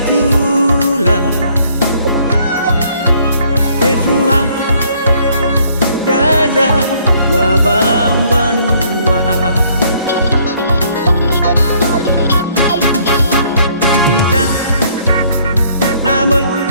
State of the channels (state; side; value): inverted; both; correlation -0.64